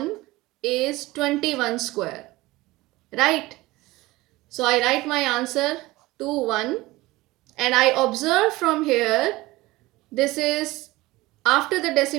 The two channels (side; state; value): left; quieter; 19.7 dB